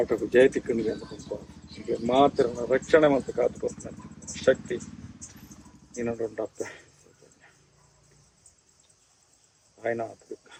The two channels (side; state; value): both; identical; correlation 1.00